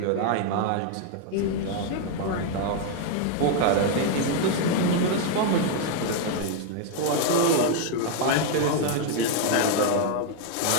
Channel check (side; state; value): both; different; correlation 0.00